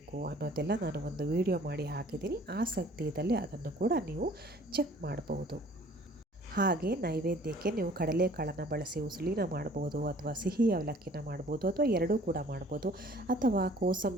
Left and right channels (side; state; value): both; normal; correlation 0.53